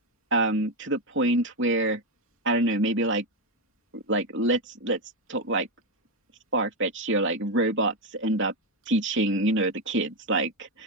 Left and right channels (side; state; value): both; normal; correlation 0.06